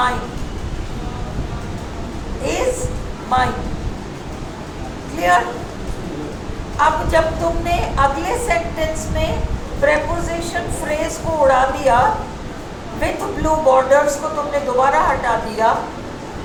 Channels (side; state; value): both; identical; correlation 1.00